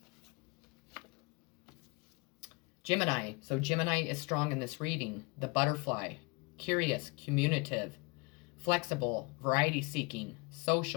Gemini. So Gemini is strong in this reading. The butterfly. Curious, communicative, flexible, variety-seeking,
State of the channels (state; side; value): quieter; right; 29.2 dB